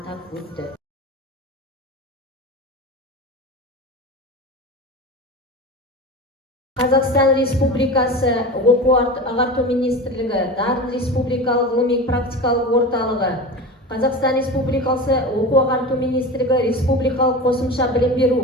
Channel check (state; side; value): normal; both; correlation 0.29